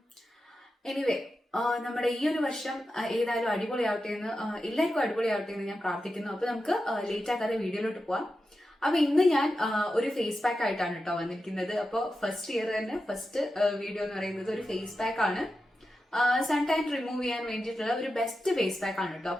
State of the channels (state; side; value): normal; both; correlation 0.91